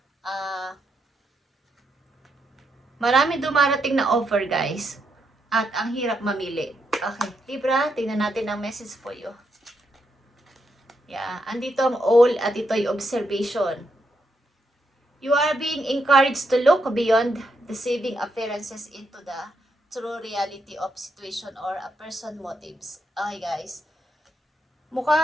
Marami dumarating na offer guys. At ang hirap mamili. Okay, Libra, tingnan natin ang message for you. Yeah, andito ang all at ito ay observation. You are being encouraged to look beyond deceiving appearances into the true reality of situation or a person motives. Okay guys,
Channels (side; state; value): both; normal; correlation 0.80